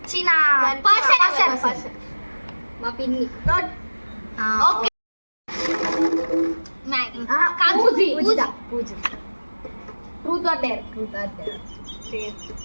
పర్సన్ మా పిన్ని. Okay. Maggie. Truth or dare.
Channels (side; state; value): both; inverted; correlation -1.00